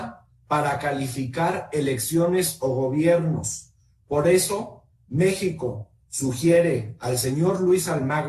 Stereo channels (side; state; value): both; identical; correlation 1.00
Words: para calificar elecciones o gobiernos. Por eso, México sugiere al señor Luis